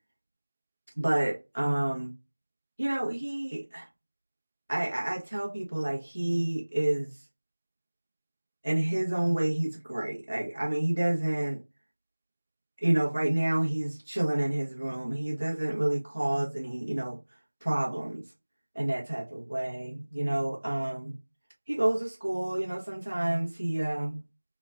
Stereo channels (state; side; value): inverted; both; correlation -1.00